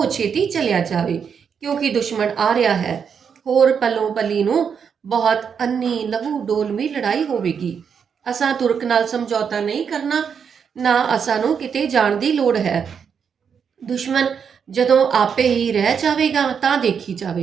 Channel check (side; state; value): left; quieter; 6.9 dB